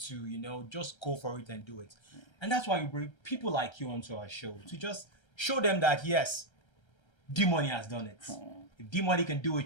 just go for it and do it. And that's why we bring people like you onto our show to just show them that, yes, Dee Money has done it. If Dee Money can do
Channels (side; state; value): right; late; 1.3 ms